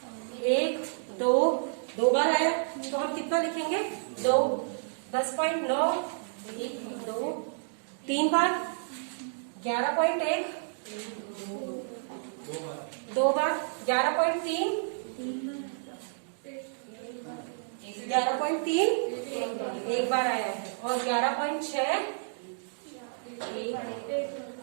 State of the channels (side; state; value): left; silent; digital silence